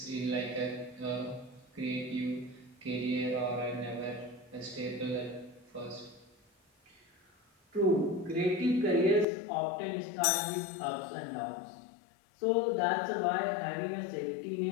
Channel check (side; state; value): right; drops out; at 9.2 s